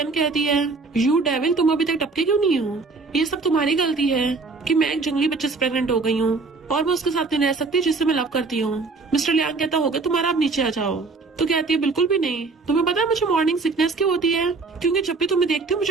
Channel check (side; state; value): left; quieter; 4.0 dB